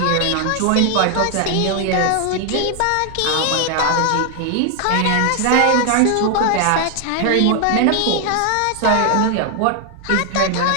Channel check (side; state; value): both; different; correlation 0.00